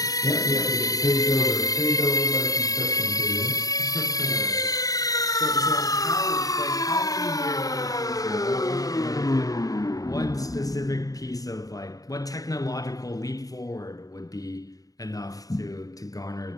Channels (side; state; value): right; late; 0.17 ms